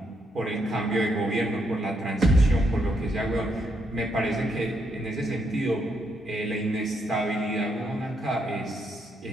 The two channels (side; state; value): both; normal; correlation 0.77